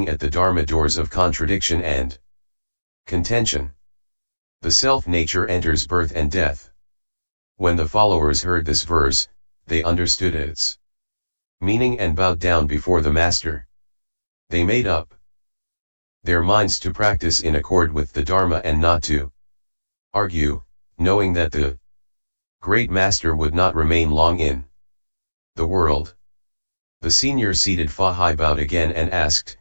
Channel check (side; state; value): both; inverted; correlation -1.00